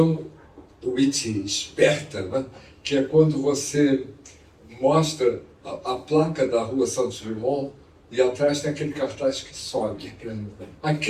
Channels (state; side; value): identical; both; correlation 1.00